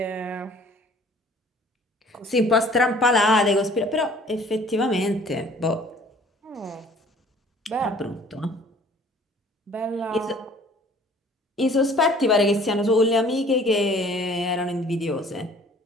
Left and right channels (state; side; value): normal; both; correlation 0.53